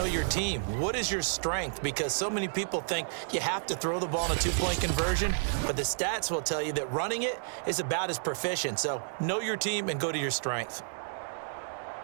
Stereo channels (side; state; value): left; silent; digital silence